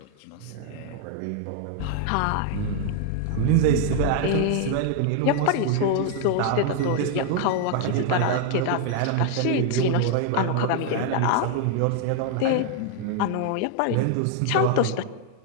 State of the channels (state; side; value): different; both; correlation 0.00